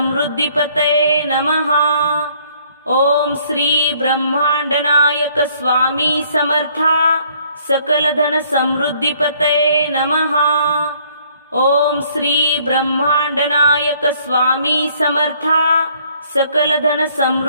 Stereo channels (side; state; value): both; inverted; correlation -0.62